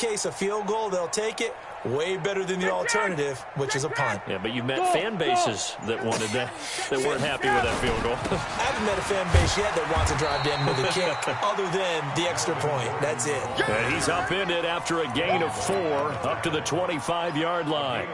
a field goal, they'll take it. Way better than the alternative, which is a punt. Yeah, but you've met fan bases that wanted that weren't happy with that field goal. I haven't met a fan base yet that wants to drive to end with a kick, other than the extra point. That's it. And he's upended after a gain of 4 up to the 25-yard line.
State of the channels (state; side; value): identical; both; correlation 1.00